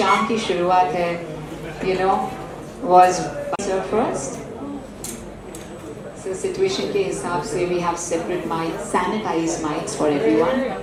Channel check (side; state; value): both; identical; correlation 1.00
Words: की शुरुआत है, you know, was first. So situation के हिसाब से we have separate mics, sanitized mics for everyone.